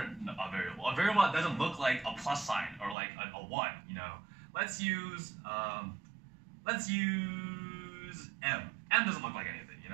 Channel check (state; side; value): drops out; left; at 3.0 s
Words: variable. A variable that doesn't look like a plus sign or like a 1. Let's use m. M doesn't look like anything.